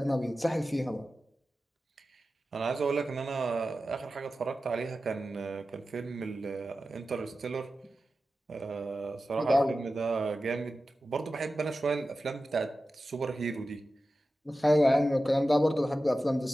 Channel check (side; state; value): both; normal; correlation 0.93